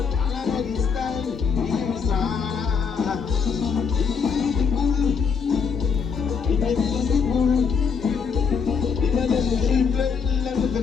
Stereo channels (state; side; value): quieter; right; 6.0 dB